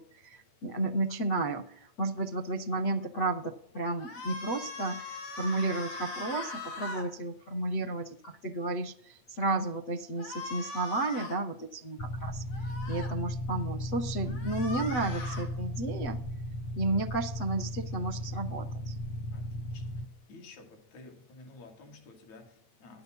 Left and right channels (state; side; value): late; right; 8.7 ms